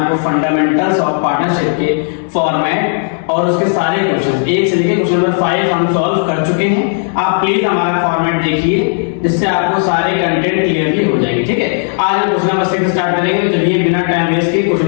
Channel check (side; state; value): right; silent; 60 dB below the other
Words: फंडामेंटल्स ऑफ पार्टनरशिप के फॉर्मेट और उसके सारे क्वेश्चंस एक से लेकर क्वेश्चन नंबर 5 हम सॉल्व कर चुके हैं। आप प्लीज हमारा फॉर्मेट देखिए जिससे आपको सारे कंटेंट क्लियरली हो जाएंगे। ठीक है, आज हम क्वेश्चन नंबर 6 स्टार्ट करेंगे। तो चलिए बिना टाइम वेस्ट किए